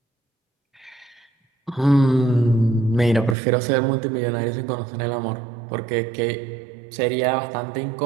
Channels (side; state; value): left; drops out; at 3.4 s